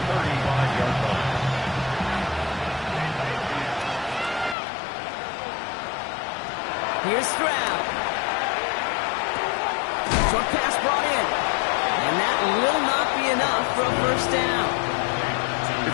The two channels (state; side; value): drops out; right; at 4.5 s